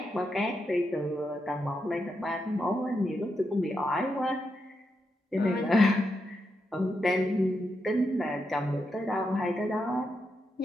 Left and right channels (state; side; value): normal; both; correlation 0.84